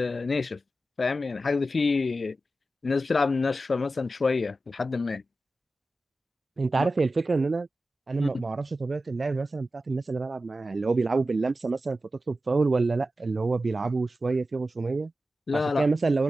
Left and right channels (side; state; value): both; normal; correlation 0.93